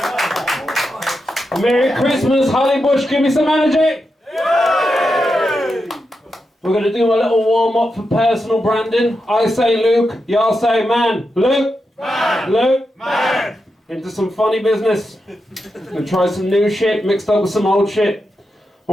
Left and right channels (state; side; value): normal; both; correlation 0.87